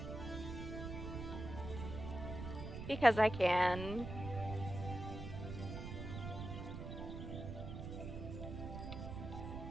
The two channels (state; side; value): noise; right; rumble, 7 dB below the sound